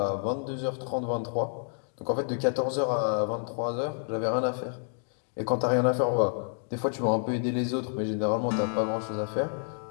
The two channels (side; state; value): right; silent; 59 dB below the other